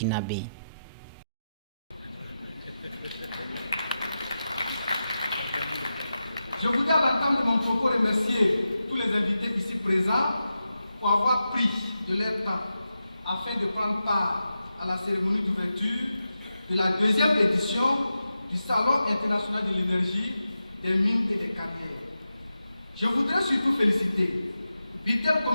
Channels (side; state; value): both; inverted; correlation -0.90